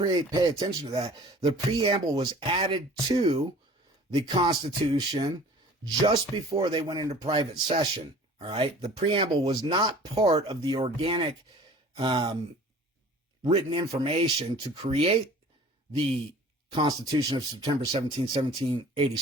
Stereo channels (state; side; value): normal; both; correlation 0.46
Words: attention to that. The preamble was added to the Constitution just before they went into private session. All right. The preamble was not part of the organic written information to create the Constitution of September 17,